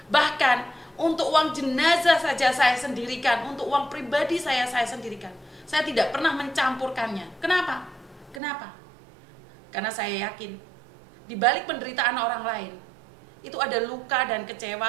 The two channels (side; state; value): left; drops out; at 8.4 s